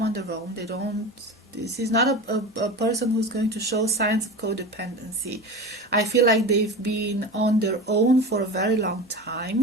on their own. They don't. This is not a person who's going to show signs of codependency. I feel like they've been on their own for a very long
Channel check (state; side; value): normal; both; correlation 0.29